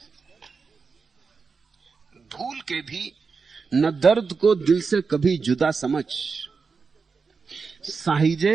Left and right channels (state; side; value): quieter; left; 5.0 dB